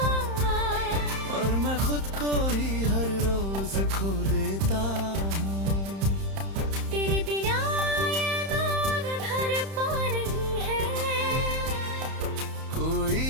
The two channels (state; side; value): late; left; 31 ms